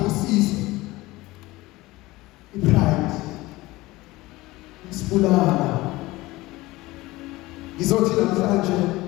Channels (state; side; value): quieter; right; 19.7 dB